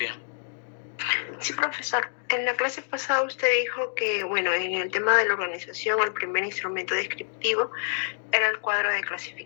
Sí, profesor. En la clase pasada usted dijo que, bueno, en el tema de la organización, el primer instrumento descriptivo era el cuadro de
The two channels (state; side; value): silent; right; digital silence